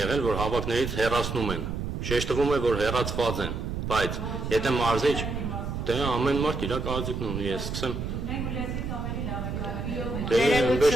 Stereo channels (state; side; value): noise; right; rumble, 4 dB below the sound